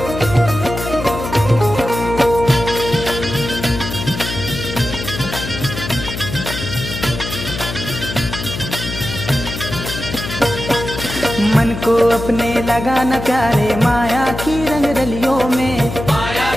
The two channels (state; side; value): noise; left; hum, 7 dB below the sound